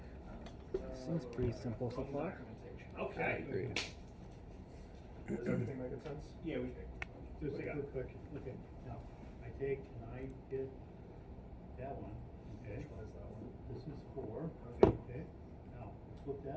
Seems pretty simple so far. Documentation. I Okay. agree. Does everything make sense? Yeah, we. Just What a do you quick question. Okay, now, I take and I hit that one, okay? Which one is that one? This is 4. Okay. Now, flip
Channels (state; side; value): identical; both; correlation 1.00